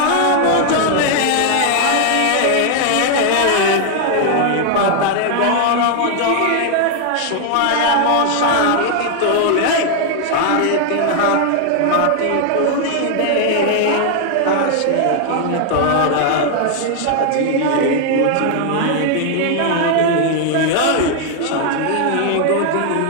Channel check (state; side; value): different; both; correlation 0.00